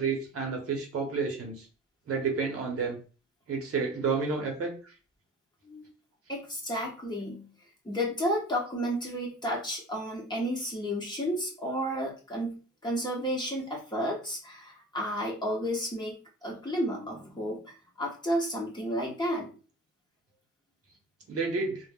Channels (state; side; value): normal; both; correlation 0.38